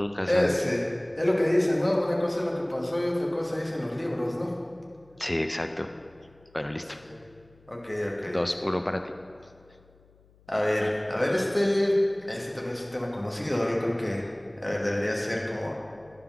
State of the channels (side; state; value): left; noise; hum, 29 dB below the sound